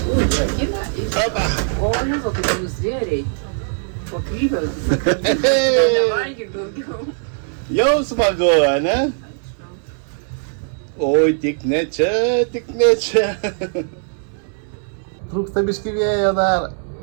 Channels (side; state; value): left; silent; 66 dB below the other